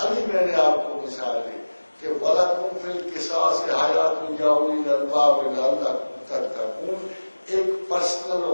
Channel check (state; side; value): inverted; both; correlation -1.00